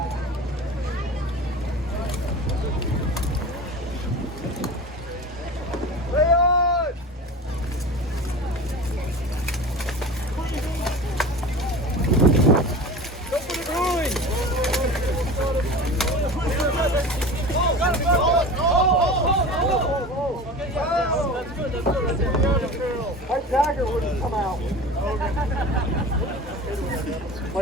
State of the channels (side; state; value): both; normal; correlation 0.34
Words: Lay on! Go for the groin! My dagger wouldn't come out.